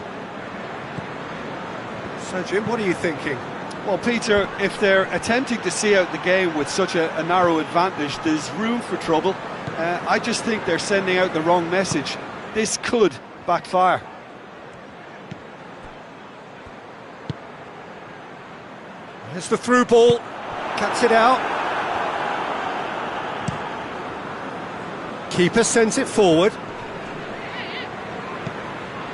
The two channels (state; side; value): identical; both; correlation 1.00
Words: So, Jim, what are you thinking? Well, Peter, if they're attempting to see out the game with such a narrow advantage, there's room for trouble. I just think they're sending out the wrong message. This could backfire. There's the through ball. Cuts it out. Keeper sends it forward.